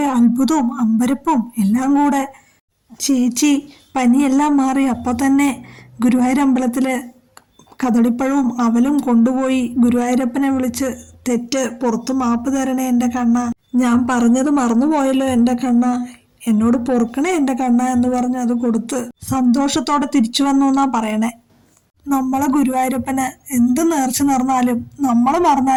അത്ഭുതവും അമ്പരപ്പും എല്ലാം കൂടെ. ചേച്ചി പനിയെല്ലാം മാറി അപ്പോൾ തന്നെ ഗുരുവായൂരമ്പലത്തില് കദളിപ്പഴവും അവലും കൊണ്ടുപോയി ഗുരുവായൂരപ്പനെ വിളിച്ച്, തെറ്റ് പുറത്തു മാപ്പ് തരണേ എൻ്റെ കണ്ണ, ഞാൻ പറഞ്ഞത് മറന്നുപോയല്ലോ എൻ്റെ കണ്ണ, എന്നോട് പൊറുക്കണേ എൻ്റെ കണ്ണ എന്ന് പറഞ്ഞ് അത് കൊടുത്ത് സന്തോഷത്തോടെ തിരിച്ചു വന്നു എന്നാ പറയണേ. നമ്മളെ ഗുരുവായൂരപ്പന് എന്ത് നേർച്ച നേർന്നാലും നമ്മൾ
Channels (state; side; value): identical; both; correlation 1.00